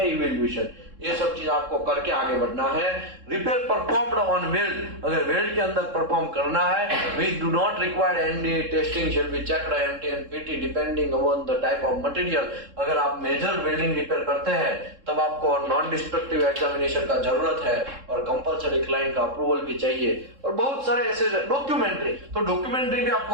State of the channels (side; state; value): left; late; 3.7 ms